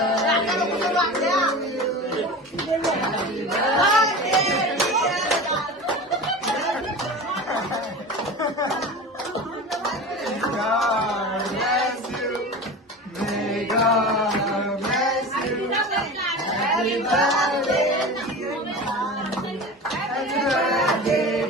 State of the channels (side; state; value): both; normal; correlation 0.32